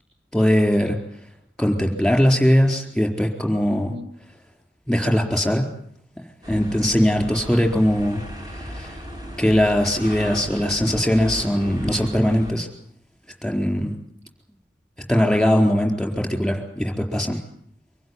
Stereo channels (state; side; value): normal; both; correlation 0.93